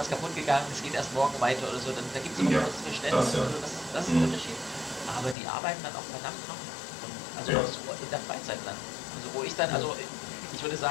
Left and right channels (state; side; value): drops out; right; at 5.4 s